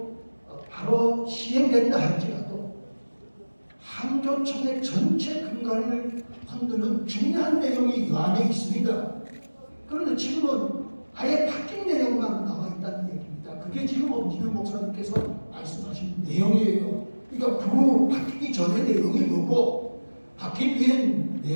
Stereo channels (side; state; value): both; inverted; correlation -1.00